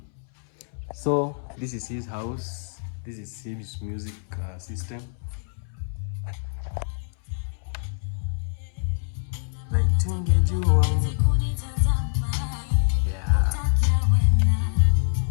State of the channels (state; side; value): silent; right; 61 dB below the other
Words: So this is his house, this is his music system.